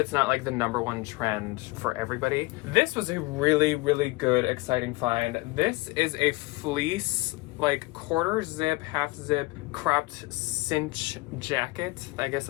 not like the #1 trend for everybody. This was a really, really good, exciting find. This is a fleece, like quarter zip, half zip, cropped cinch jacket. I guess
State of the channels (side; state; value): right; quieter; 22.5 dB